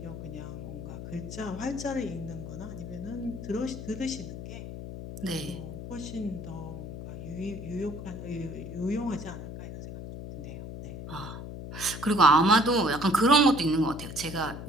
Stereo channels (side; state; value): left; noise; hum, 9 dB below the sound